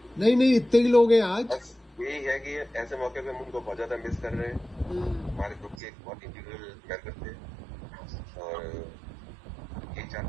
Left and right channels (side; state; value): left; drops out; at 5.8 s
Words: नहीं, इतने ही लोग हैं आज। बस यही है कि ऐसे मौके पे हम उनको बहुत ज्यादा मिस कर रहे हैं। हमारे ग्रुप के एक बहुत इंटीग्रल मेंबर थे, और ये